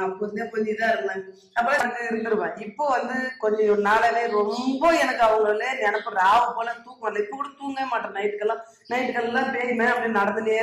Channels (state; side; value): identical; both; correlation 1.00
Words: அப்ப இருந்தே கொஞ்சம் இதா இருந்தாங்க. அப்ப இருந்துருவேன். இப்போ வந்து கொஞ்சம் நாளாவே ரொம்ப எனக்கு அவங்கள நினைப்பு ராவு போல தூக்கம் வரல. இப்ப கூட தூங்கவே மாட்டேன். நைட்டுக்கெல்லாம் பேயுமே அப்படி நடந்துனே